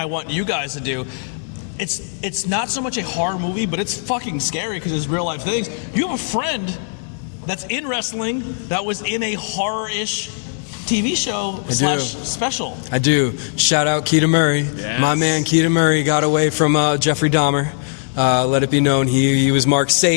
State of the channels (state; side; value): silent; right; 66 dB below the other